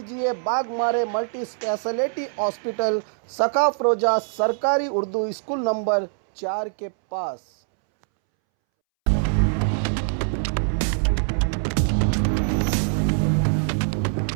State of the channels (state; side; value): silent; left; 63 dB below the other